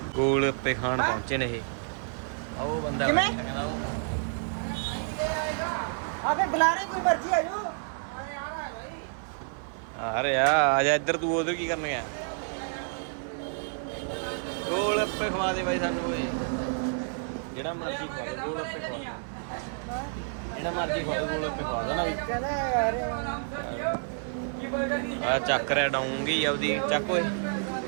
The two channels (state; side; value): silent; left; digital silence